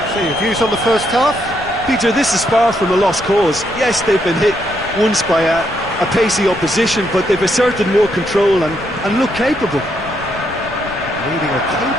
So your views on the first half? Peter, this is far from a lost cause. Yes, they've been hit once by a pacey opposition, but they've asserted more control and look capable. Leading a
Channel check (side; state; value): left; noise; rumble, 17 dB below the sound